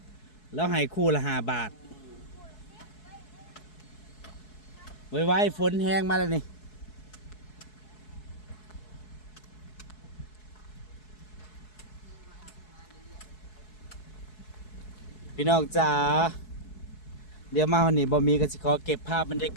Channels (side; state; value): right; late; 4.7 ms